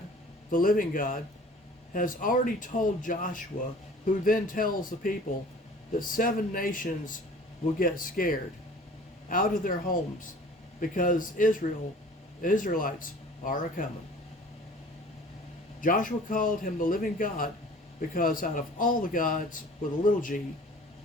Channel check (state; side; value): normal; both; correlation 0.47